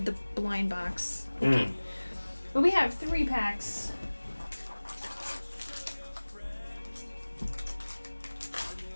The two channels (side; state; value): both; inverted; correlation -1.00